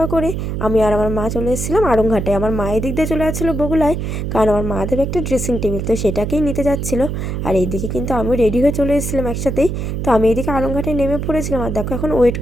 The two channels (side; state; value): right; noise; hum, 3 dB below the sound